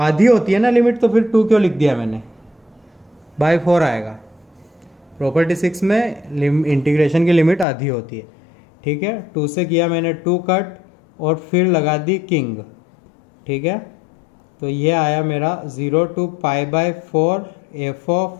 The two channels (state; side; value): drops out; right; at 7.7 s